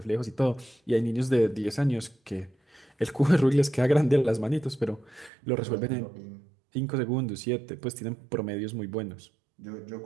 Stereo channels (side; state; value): left; drops out; at 5.3 s